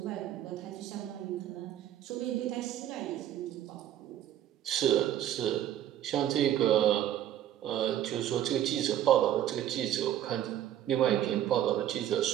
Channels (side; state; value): left; quieter; 11.7 dB